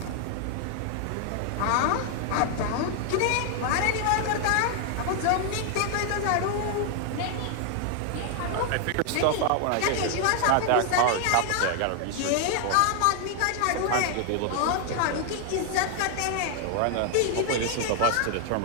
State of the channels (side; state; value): both; different; correlation 0.00